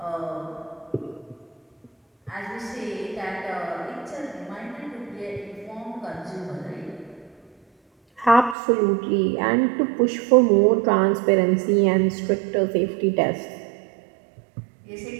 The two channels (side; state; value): left; drops out; at 8.6 s